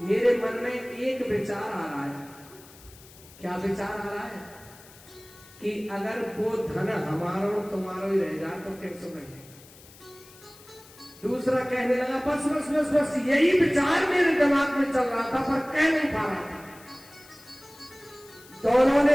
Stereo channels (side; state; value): left; noise; hiss, 22 dB below the sound